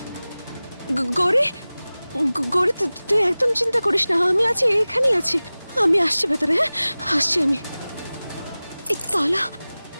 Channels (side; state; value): both; inverted; correlation -0.98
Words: গৌরী গৌরী, তুই একদম চিন্তা করিস না, আমি আছি, এখানেই আছি। আমি আসছি ভেতরে। হ্যাঁ, আসছি আমি।